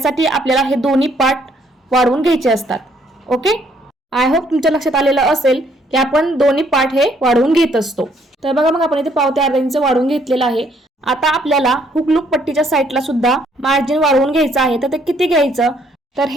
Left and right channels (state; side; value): normal; both; correlation 0.67